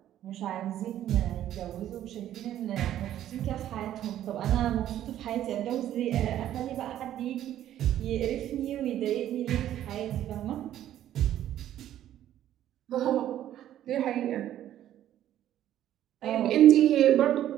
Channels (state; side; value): quieter; left; 11.9 dB